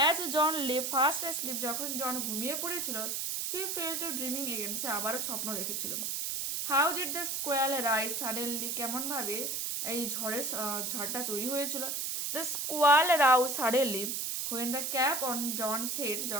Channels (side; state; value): right; noise; hiss, 1 dB below the sound